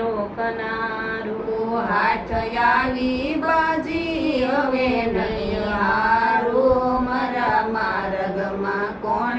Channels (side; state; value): both; identical; correlation 1.00